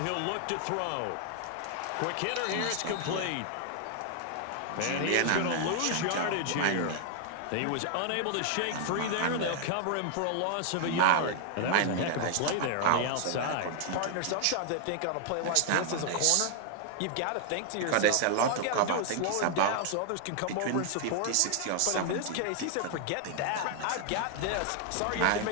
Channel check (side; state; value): both; different; correlation 0.00